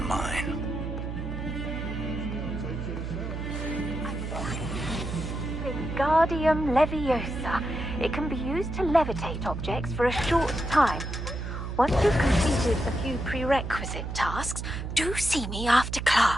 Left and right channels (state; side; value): noise; right; hum, 5 dB below the sound